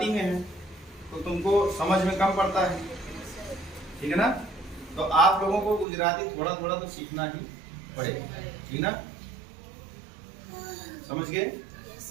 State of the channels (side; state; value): left; drops out; at 5.9 s